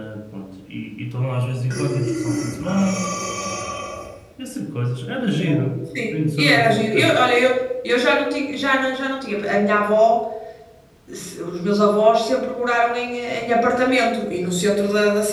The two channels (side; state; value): both; identical; correlation 1.00